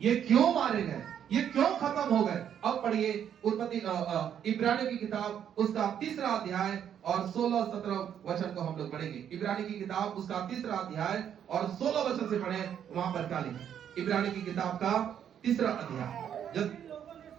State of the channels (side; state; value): left; quieter; 9.2 dB